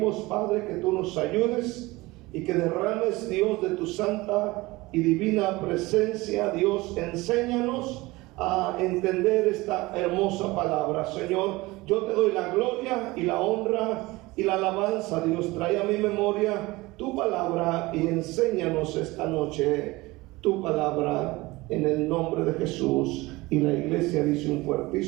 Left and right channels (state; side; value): quieter; left; 21.1 dB